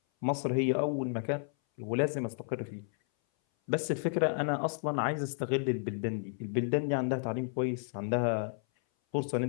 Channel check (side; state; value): right; silent; 56 dB below the other